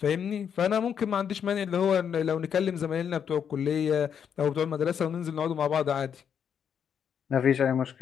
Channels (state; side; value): quieter; right; 7.9 dB